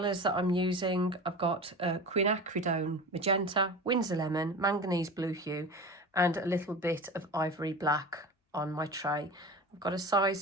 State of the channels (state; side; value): normal; both; correlation 0.31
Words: that I'm using, I've got quinacridone magenta, Winsor lemon, manganese blue hue, and a little bit of ivory black on my tray. I've got a size